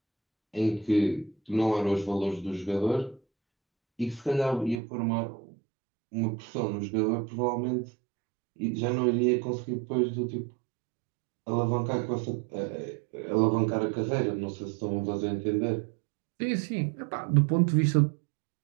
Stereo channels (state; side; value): drops out; left; at 4.8 s